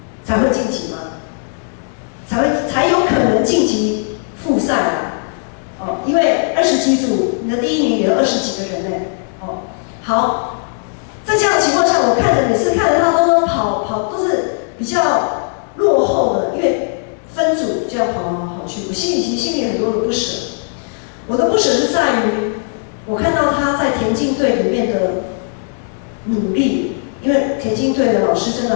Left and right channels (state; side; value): silent; right; 68 dB below the other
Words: 才会晋级吗？才有可能晋级复赛啊。因为20几组，你的第1名也有20几个人呢。好，在这样的情况下，我每次看着他都跑都是比较落后的，因为分组就要跑去，我心里很多的不舍。我的不舍是在于，我看到他在田径队里面的努力，因为田径队的老师真